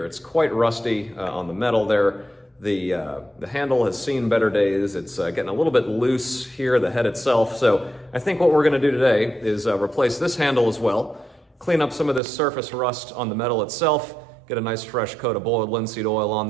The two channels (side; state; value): left; drops out; at 12.2 s